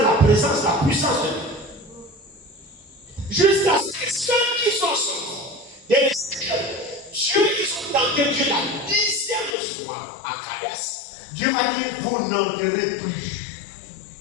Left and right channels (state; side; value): drops out; right; at 9.6 s